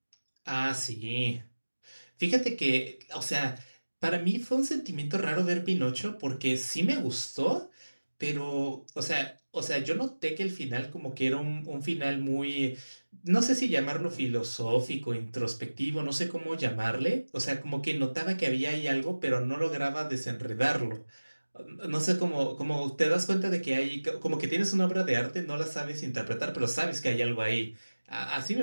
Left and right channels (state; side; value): inverted; both; correlation -1.00